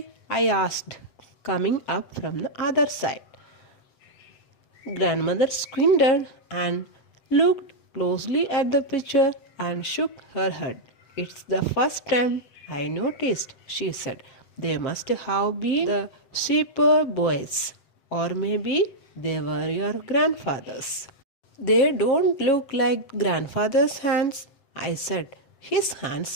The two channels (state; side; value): late; right; 7.6 ms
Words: I asked, coming up from the other side. Grandmother squinted and looked closely at the picture and shook her head. It's the first time I noticed, she said. They must have been the shepherd boys, or maybe they were your grandfather's. They don't look like grandfather's hands, I said. His hands